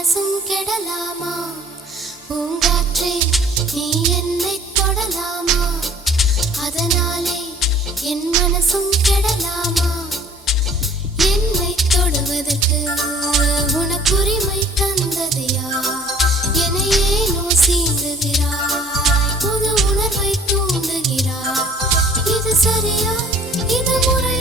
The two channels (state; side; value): normal; both; correlation 0.53